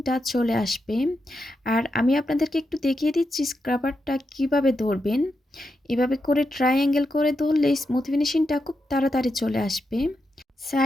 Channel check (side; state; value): both; normal; correlation 0.86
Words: চলে আসবে। আর আমি আপনাদেরকে একটু দেখিয়ে দিচ্ছি স্ক্রাবারটা কিভাবে ধরবেন। এভাবে করে ট্রায়াঙ্গেল করে ধরলে স্মুথ ফিনিশিংটা খুব তাড়াতাড়ি চলে আসবে।